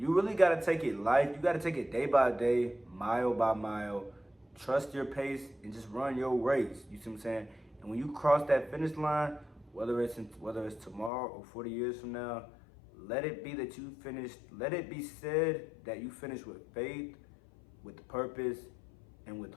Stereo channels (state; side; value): drops out; right; at 11.1 s